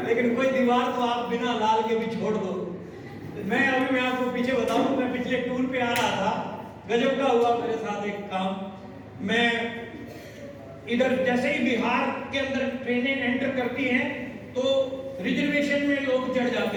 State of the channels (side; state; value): both; identical; correlation 1.00